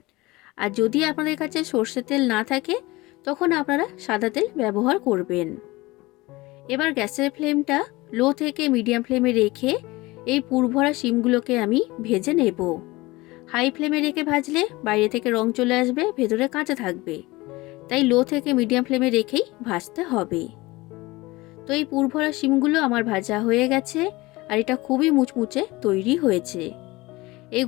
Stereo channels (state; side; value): quieter; right; 21.2 dB